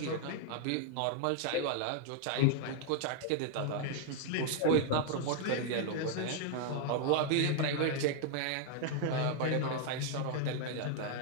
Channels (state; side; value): different; both; correlation 0.00